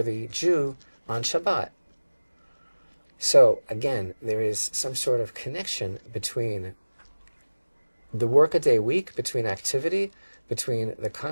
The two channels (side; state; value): both; inverted; correlation -1.00